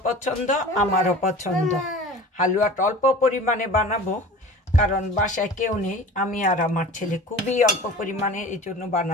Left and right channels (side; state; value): both; normal; correlation 0.39